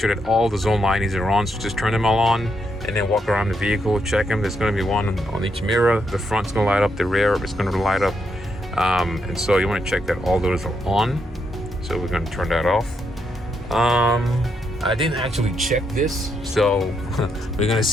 that all the zone lightings are on, so just turn them all on and then walk around the vehicle, check them. There's going to be one on each mirror. The front's going to light up, the rear is going to light up. And so you want to check that all those are on. So we're going to turn that off. I didn't actually check this, so we're going to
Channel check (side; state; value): both; normal; correlation 0.79